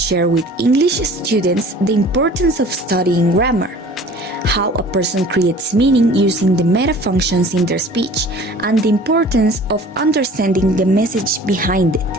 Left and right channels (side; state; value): both; normal; correlation 0.46